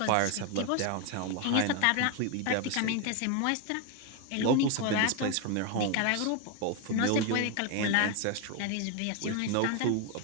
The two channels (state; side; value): different; both; correlation 0.01